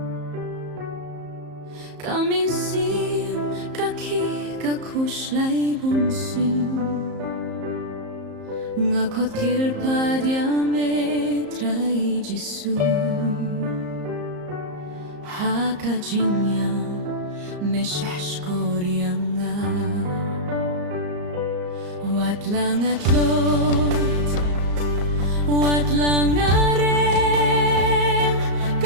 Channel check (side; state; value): left; late; 34 ms